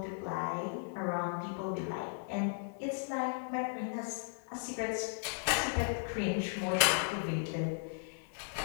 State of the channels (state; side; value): silent; right; 54 dB below the other